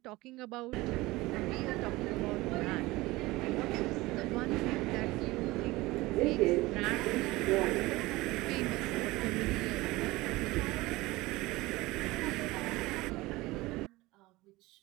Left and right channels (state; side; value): quieter; left; 20.2 dB